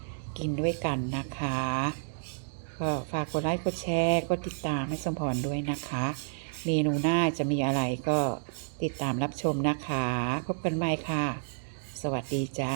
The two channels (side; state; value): left; silent; digital silence